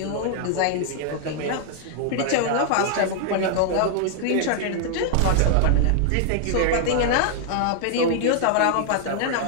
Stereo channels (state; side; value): different; both; correlation 0.00